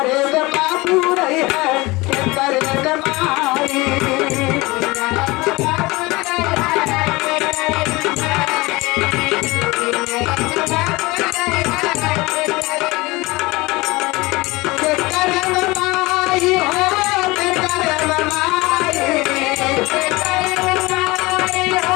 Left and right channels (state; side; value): quieter; right; 22.4 dB